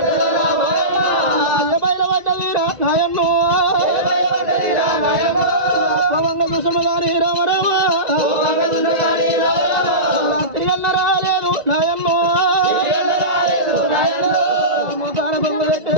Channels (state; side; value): late; left; 2.0 ms